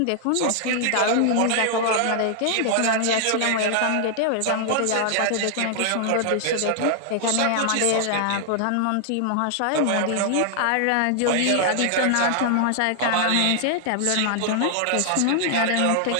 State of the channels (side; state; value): both; different; correlation 0.00